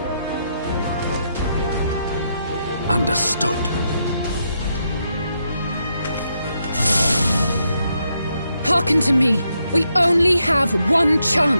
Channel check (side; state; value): both; inverted; correlation -0.80